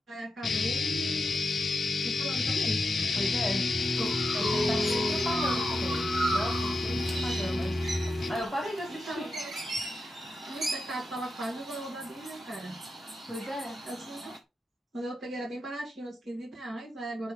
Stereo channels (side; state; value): both; normal; correlation 0.87